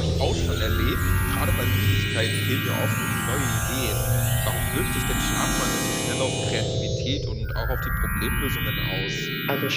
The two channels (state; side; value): identical; both; correlation 1.00